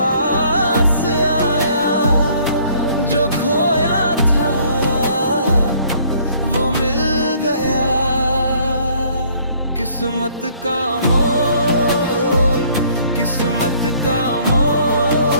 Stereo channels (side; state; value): both; inverted; correlation -0.60